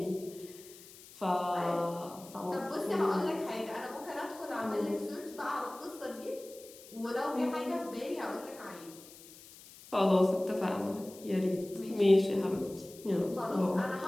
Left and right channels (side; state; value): left; noise; hiss, 19 dB below the sound